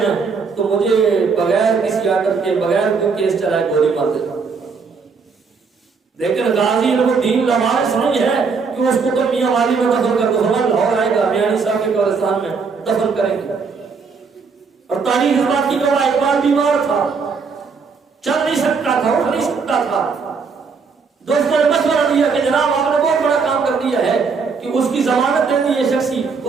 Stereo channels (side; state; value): left; quieter; 5.2 dB